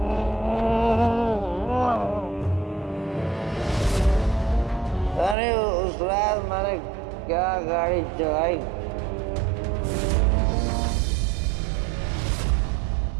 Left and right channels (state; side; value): drops out; left; at 5.4 s